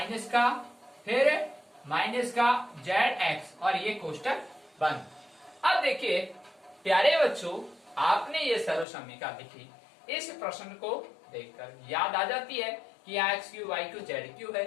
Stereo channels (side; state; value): right; drops out; at 8.8 s